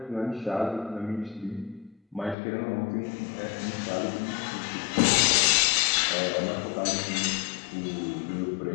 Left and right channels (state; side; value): drops out; right; at 2.4 s